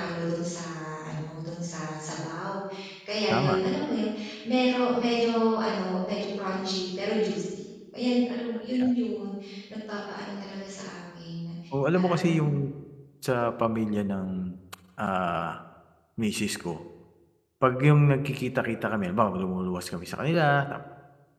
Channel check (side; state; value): both; identical; correlation 1.00